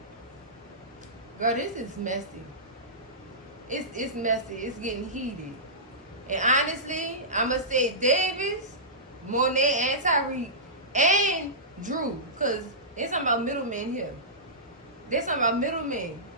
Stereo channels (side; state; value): both; normal; correlation -0.18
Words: Girl, this is messy. It's messy. It's getting heated. And honestly, I'ma say Davis, Monet, and Tyreek, and Drew, cause there's something about middlemen here. There's something about middlemen.